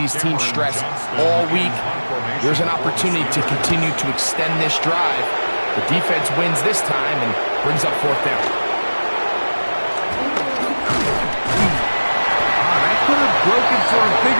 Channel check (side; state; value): both; inverted; correlation -1.00